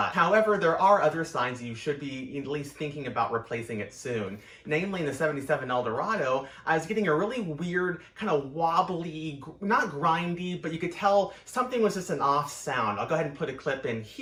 However, there are other signs you should be at least thinking about replacing it soon. Namely, in the 77 Eldorado, I was getting a really weird, kind of wobbly, not grindy, but you could tell something was just an off sound. I'll go ahead and put a clip in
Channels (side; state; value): both; identical; correlation 1.00